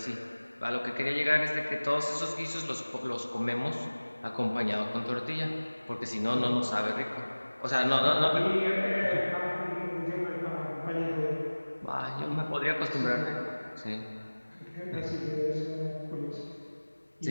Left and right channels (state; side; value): inverted; both; correlation -1.00